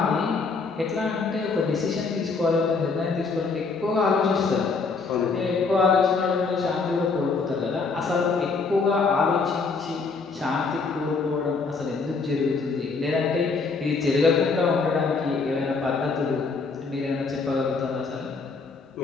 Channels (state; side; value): quieter; right; 4.5 dB